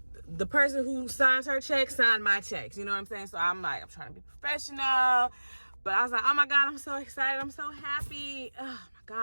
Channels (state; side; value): inverted; both; correlation -1.00